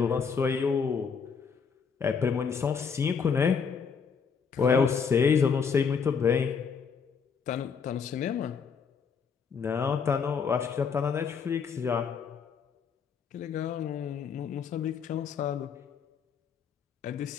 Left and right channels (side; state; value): right; quieter; 6.2 dB